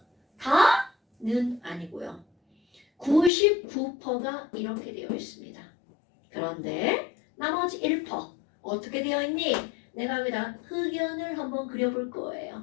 다는 아니고요. 99%가 이렇게 되어 있습니다. 그런데 나머지 1% 어떻게 되어 있니? 내가 여기다 흑연을 한번 그려볼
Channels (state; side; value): drops out; right; at 3.3 s